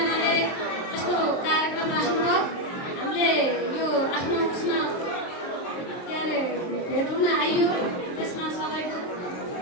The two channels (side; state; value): right; late; 23 ms